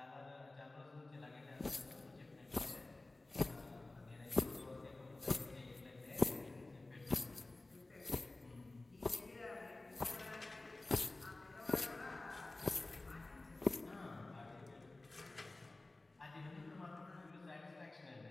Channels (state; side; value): quieter; right; 3.0 dB